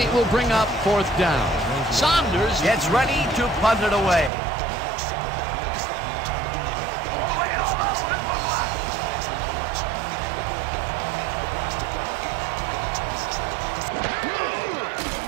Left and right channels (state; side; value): drops out; left; at 4.3 s